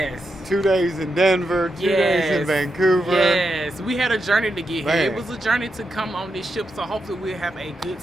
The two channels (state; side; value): normal; both; correlation 0.85